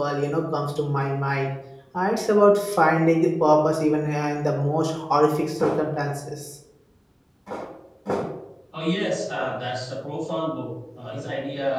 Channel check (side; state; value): both; identical; correlation 1.00